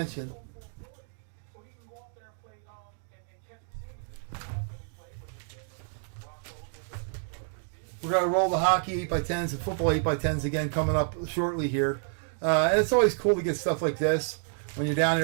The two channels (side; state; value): left; silent; digital silence